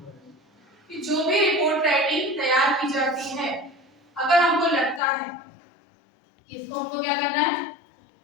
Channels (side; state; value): right; drops out; at 5.0 s